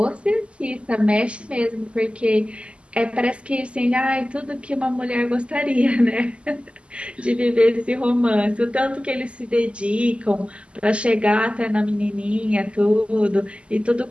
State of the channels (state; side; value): late; left; 0.055 ms